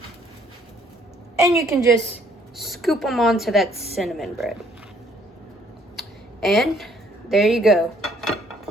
And you can just scoop them onto that cinnamon bread. And there you go.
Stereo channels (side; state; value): both; normal; correlation 0.63